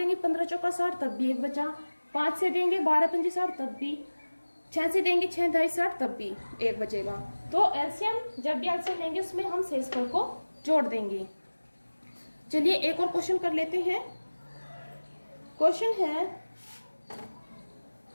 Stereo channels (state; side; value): inverted; both; correlation -1.00